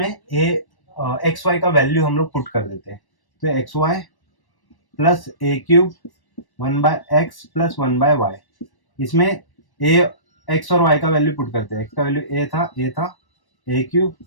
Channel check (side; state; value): right; late; 1.1 ms